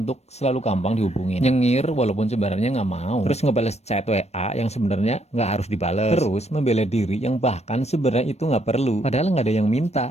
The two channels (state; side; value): late; right; 0.31 ms